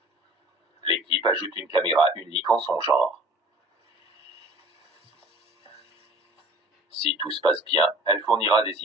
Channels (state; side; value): normal; both; correlation 0.46